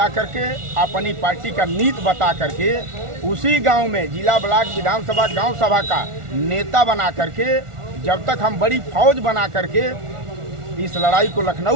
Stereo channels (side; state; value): left; late; 1.4 ms